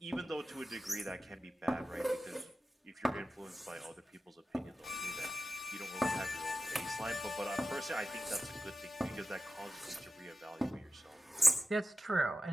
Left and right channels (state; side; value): normal; both; correlation 0.92